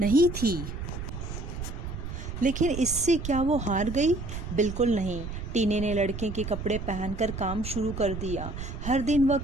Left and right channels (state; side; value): noise; right; rumble, 7 dB below the sound